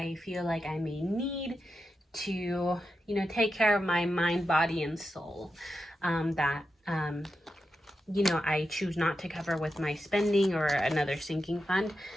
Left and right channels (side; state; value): both; normal; correlation 0.89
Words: feel like I may need to, you know, take care of my mind, body, and soul. You know, I choose not to cover with my spending or another sinking fund.